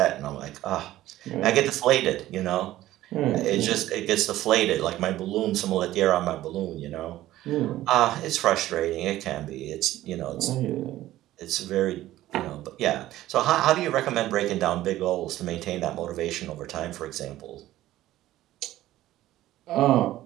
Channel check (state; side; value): quieter; left; 14.8 dB